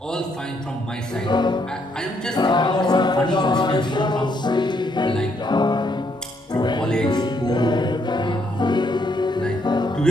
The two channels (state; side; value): normal; both; correlation 0.73